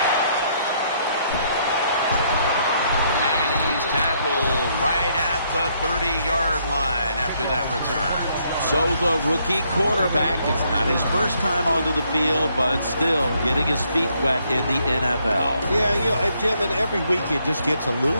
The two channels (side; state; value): both; inverted; correlation -0.71